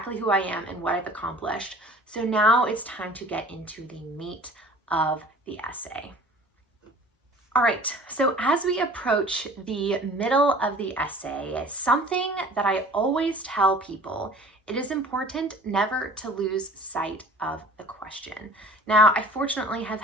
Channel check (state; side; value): normal; both; correlation 0.46